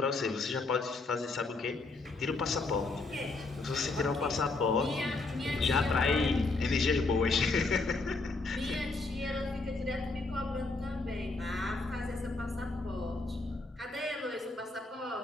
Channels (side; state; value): right; quieter; 3.5 dB